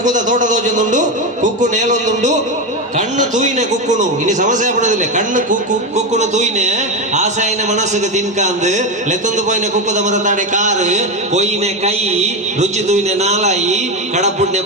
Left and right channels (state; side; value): normal; both; correlation 0.13